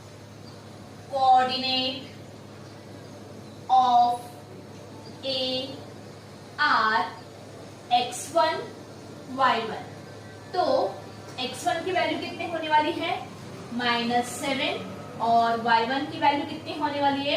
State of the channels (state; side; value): identical; both; correlation 1.00